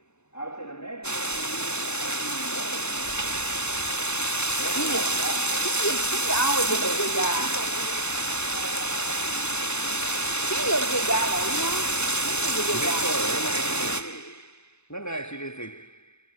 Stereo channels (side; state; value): right; late; 0.81 ms